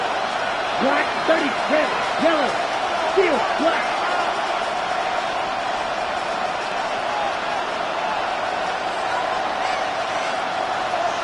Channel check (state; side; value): identical; both; correlation 1.00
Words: Black 30, red, yellow, steel, black.